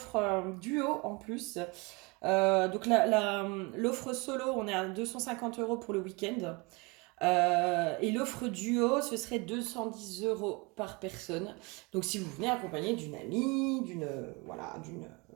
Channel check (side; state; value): left; quieter; 27.6 dB